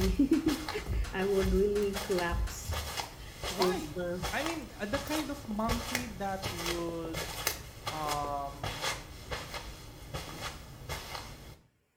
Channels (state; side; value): identical; both; correlation 1.00